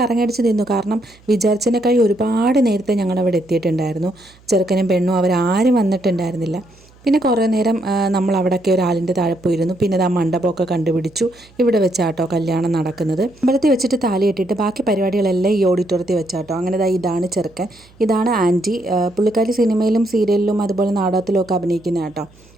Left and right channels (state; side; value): noise; right; hum, 28 dB below the sound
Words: നിന്നു. കാരണം വിചാരിച്ചതിനേക്കാൾ ഒരുപാട് നേരത്തെ ഞങ്ങളവിടെ എത്തിയിട്ടുണ്ടായിരുന്നു. ചെറുക്കനും പെണ്ണും അവരാരും വന്നിട്ടുണ്ടായിരുന്നില്ല. പിന്നെ കുറേ നേരം നമ്മൾ അവിടെയൊക്കെ ഒരാളിൻ്റെ താഴെ പോയിരുന്നു. പിന്നെ ആ മണ്ഡപമൊക്കെ കണ്ടുപിടിച്ചു. ഇവിടെ വെച്ചാട്ടോ കല്യാണം നടക്കുന്നത്. അമ്പലത്തിൽ വെച്ചിട്ട് താലി കെട്ടിയിട്ട് ബാക്കി പരിപാടികളെല്ലാം ഈ ഓഡിറ്റോറിയത്തിൽ വെച്ചാട്ടോ. അങ്ങനെ ഇതാണ് ചെറുക്കൻ, ഇതാണ് ആൻറ്റി. പുള്ളിക്കാരി സിനിമയിലും സീരിയലിലും അതുപോലെ നാടകത്തിലും ഒക്കെ അഭിനയിക്കുന്ന കേട്ടോ.